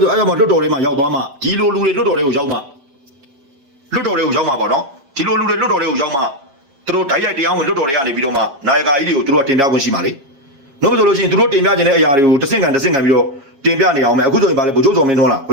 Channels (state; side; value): late; left; 7.4 ms